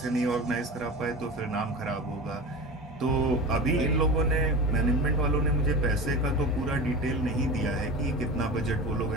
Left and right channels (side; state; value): both; normal; correlation 0.30